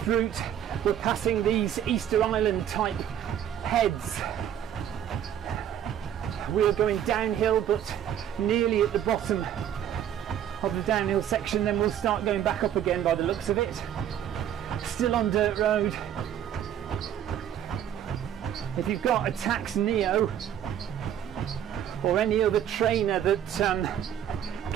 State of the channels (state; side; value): quieter; left; 10.1 dB